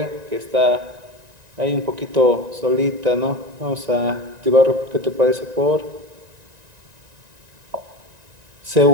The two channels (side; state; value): left; late; 1.9 ms